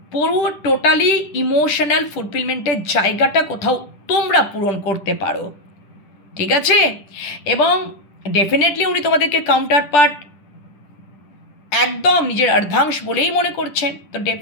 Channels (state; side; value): late; right; 10 ms